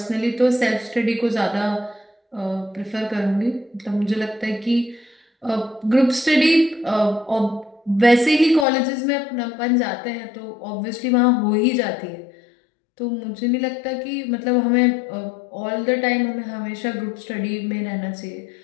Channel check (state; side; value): drops out; right; at 8.7 s